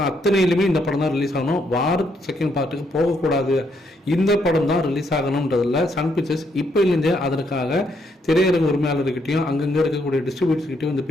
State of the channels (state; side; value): normal; both; correlation 0.74